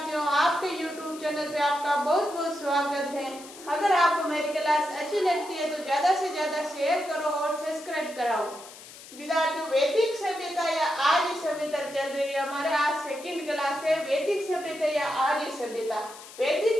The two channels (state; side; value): noise; left; hiss, 17 dB below the sound